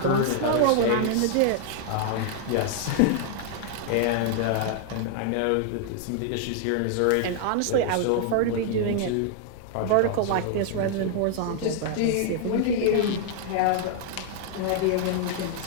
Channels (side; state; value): both; different; correlation -0.01